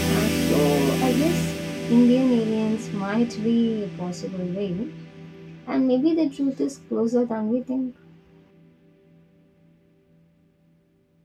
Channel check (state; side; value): identical; both; correlation 1.00